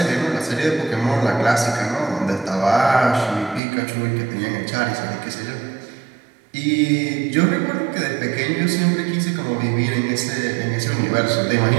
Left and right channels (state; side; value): drops out; left; at 3.6 s